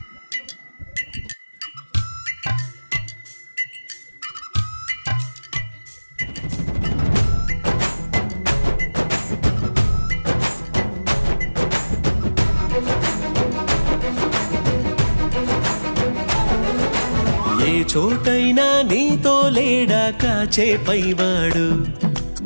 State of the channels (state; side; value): inverted; both; correlation -1.00